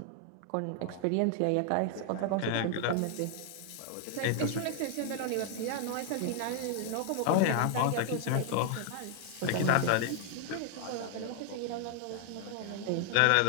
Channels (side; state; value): both; different; correlation 0.00